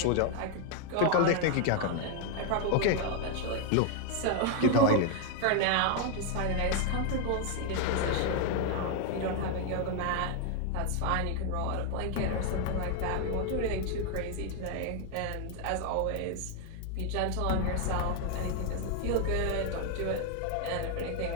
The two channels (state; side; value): different; both; correlation 0.01